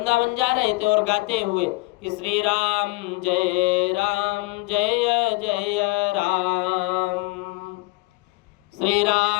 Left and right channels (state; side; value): quieter; right; 23.7 dB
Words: जा रहे थे और गाते हुए कि श्री राम जय जय राम, श्री